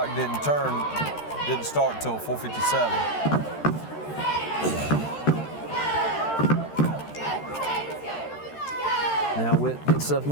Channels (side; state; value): right; late; 13 ms